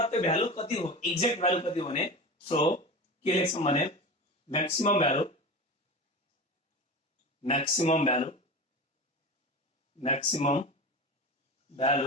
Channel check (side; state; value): both; normal; correlation 0.29